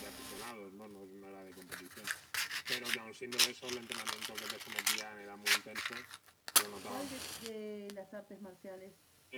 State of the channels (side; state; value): both; identical; correlation 1.00